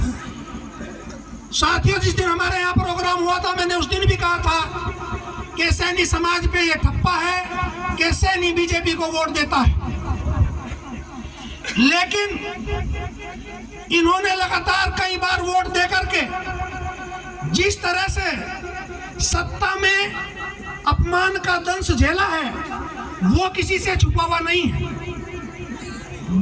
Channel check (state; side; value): identical; both; correlation 1.00